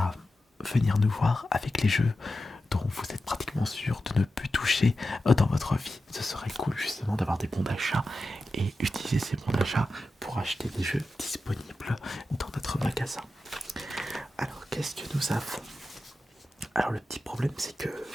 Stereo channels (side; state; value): both; normal; correlation 0.92